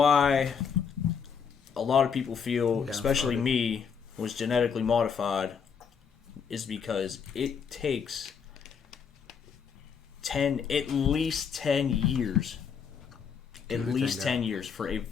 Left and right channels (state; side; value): quieter; right; 6.6 dB